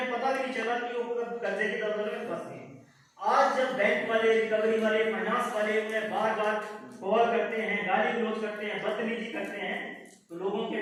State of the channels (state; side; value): identical; both; correlation 1.00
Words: पता भी नहीं चला कि वो कर्जे की दलदल में फंस गए। आज जब बैंक वाले, रिकवरी वाले, फाइनेंस वाले उन्हें बार बार कॉल करते हैं, गाली गलौज करते हैं, बदतमीजी करते हैं, तो लोगों